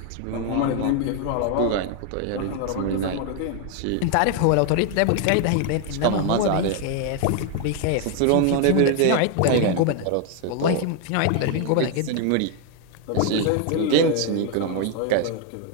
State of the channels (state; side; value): different; both; correlation 0.01